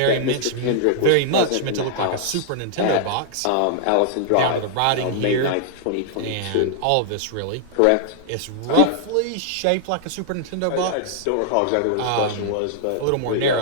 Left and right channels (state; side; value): different; both; correlation -0.01